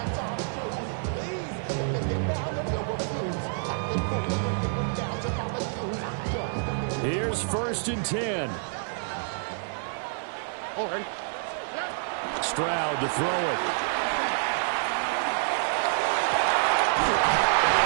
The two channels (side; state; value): left; silent; 59 dB below the other